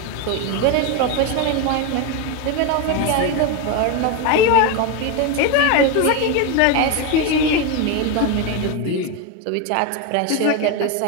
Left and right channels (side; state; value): both; different; correlation 0.02